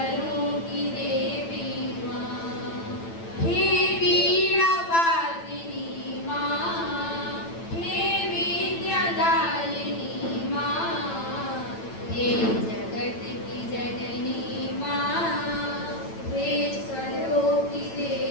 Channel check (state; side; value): late; right; 8.9 ms